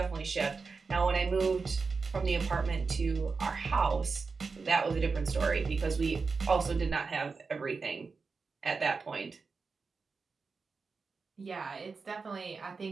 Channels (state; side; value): quieter; left; 4.6 dB